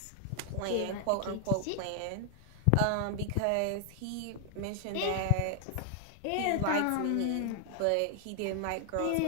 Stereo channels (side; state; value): both; different; correlation 0.00